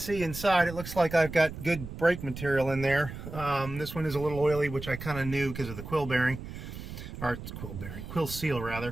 inside, it looks like I've got good brake material in there. This one is a little oily, which I kind of knew because of the quill bearing, or quill seal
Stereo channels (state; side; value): noise; right; rumble, 10 dB below the sound